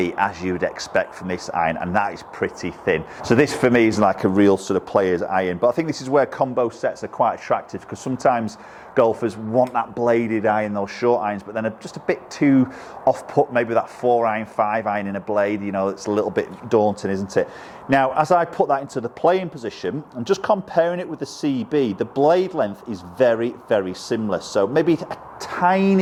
as you would expect from this iron, and that is pretty thin. So this for me is like a real sort of player's iron, but I think this is where combo sets are quite attractive, because sometimes golfers want that bladed iron, those short irons, but then are just a bit too off-put, maybe that 4-iron, 5-iron in a blade, you know, it's a little bit daunting, isn't it? Now, as I put that into the playing position, I'm just comparing it with the CB, the blade length is very, very similar. So maybe a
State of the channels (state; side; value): identical; both; correlation 1.00